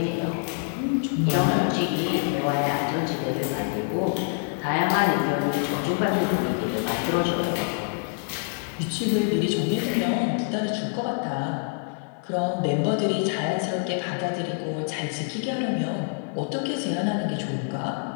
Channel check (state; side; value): silent; right; 61 dB below the other